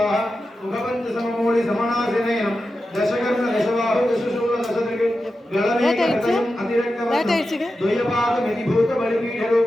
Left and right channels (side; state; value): both; normal; correlation 0.91